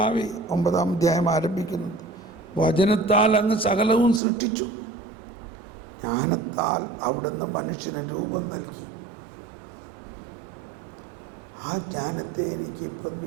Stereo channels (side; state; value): left; drops out; at 4.2 s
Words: 9-ാം അധ്യായം ആരംഭിക്കുന്നത്, വചനത്താൽ അങ്ങ് സകലവും സൃഷ്ടിച്ചു, ജ്ഞാനത്താൽ അവിടുന്ന് മനുഷ്യന് രൂപം നൽകി. ആ ജ്ഞാനത്തെ എനിക്ക് ഇപ്പം